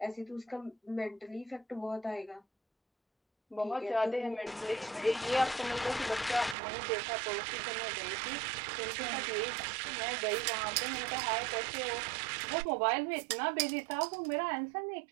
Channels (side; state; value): left; drops out; at 6.6 s